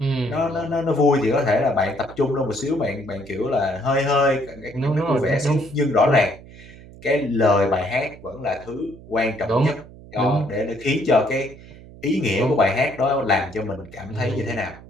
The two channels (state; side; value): noise; right; hum, 19 dB below the sound